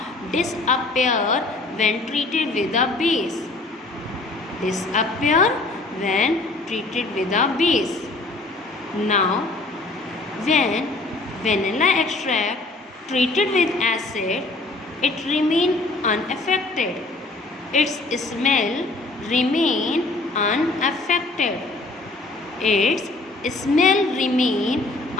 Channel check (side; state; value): right; quieter; 3.2 dB